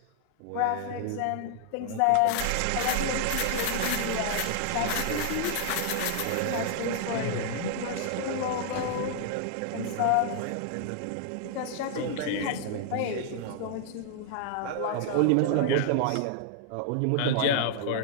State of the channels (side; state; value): both; different; correlation -0.01